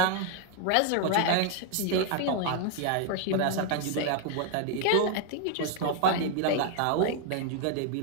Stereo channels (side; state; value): both; different; correlation 0.01